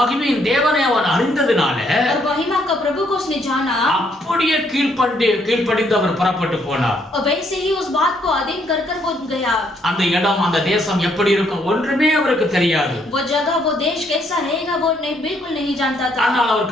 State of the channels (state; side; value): normal; both; correlation 0.70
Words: மகிமையின் தேவனை அவன் அறிந்ததனால और महिमा का प्रभु को उसने जाना, அப்படியே கீழ்ப்படிந்து அவர் புறப்பட்டு போனார். और वैसे ही उस बात को अधीन कर वो गया। அந்த இடம் அந்த தேசம் எப்படி இருக்கும் ஒன்றுமே அவருக்கு தெரியாது. वो जगह वो देश कैसा रहेगा वो बिल्कुल नहीं जानता था। ஆனால் அவர்